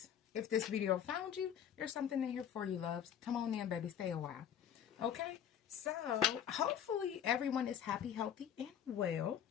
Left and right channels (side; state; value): right; quieter; 9.2 dB